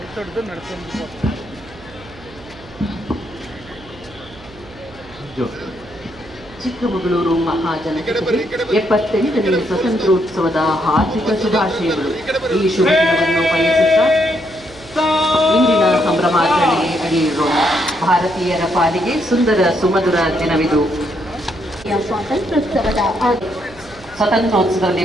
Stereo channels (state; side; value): noise; right; hum, 21 dB below the sound